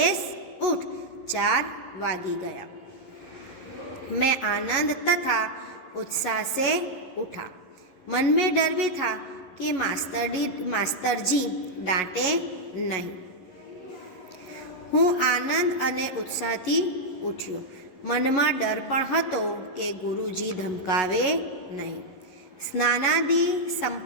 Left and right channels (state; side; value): late; right; 11 ms